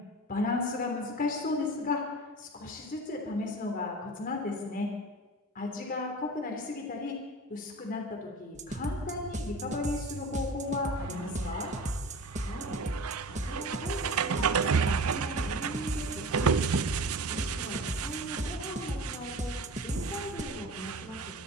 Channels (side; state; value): both; normal; correlation 0.35